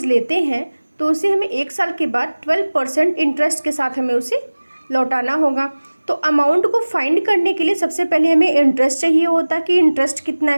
लेते हैं तो उसे हमें 1 साल के बाद 12% इंटरेस्ट के साथ हमें उसे लौटाना होगा। तो अमाउंट को फाइंड करने के लिए सबसे पहले हमें इंटरेस्ट चाहिए होता कि इंटरेस्ट कितना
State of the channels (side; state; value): both; inverted; correlation -1.00